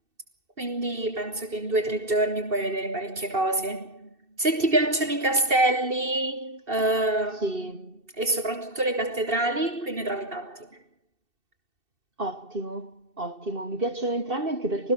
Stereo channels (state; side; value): late; left; 2.7 ms